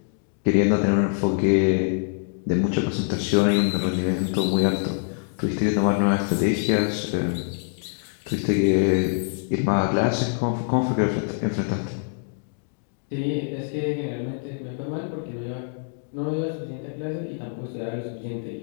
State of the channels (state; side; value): silent; right; digital silence